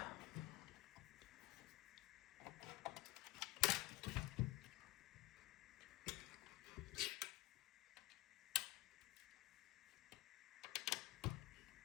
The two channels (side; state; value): right; quieter; 19.2 dB